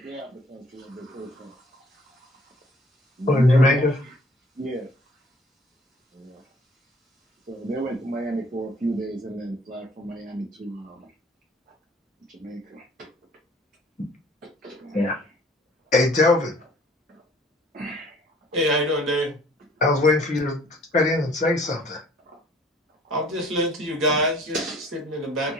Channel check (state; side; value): normal; both; correlation 0.54